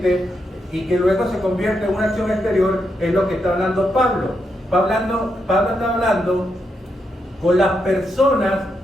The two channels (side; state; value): both; normal; correlation 0.82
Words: y que luego se convierte en una acción exterior es lo que está hablando Pablo. Pablo está hablando con las personas